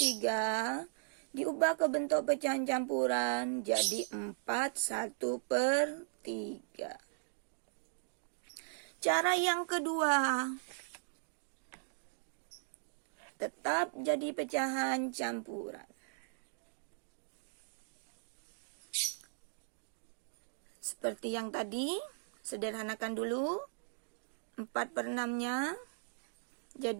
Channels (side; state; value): left; silent; digital silence